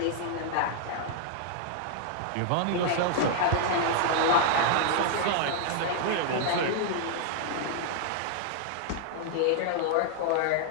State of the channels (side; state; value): both; different; correlation -0.01